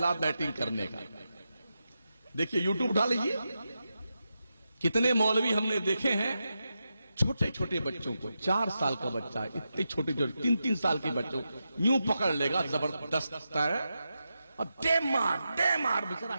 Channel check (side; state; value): both; inverted; correlation -0.88